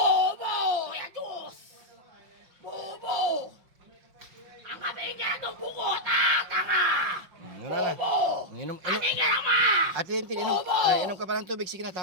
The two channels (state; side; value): late; left; 5.7 ms